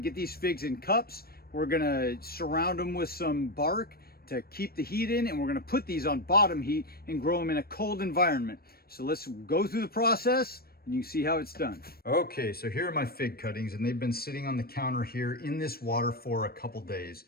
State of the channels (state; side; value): late; right; 0.44 ms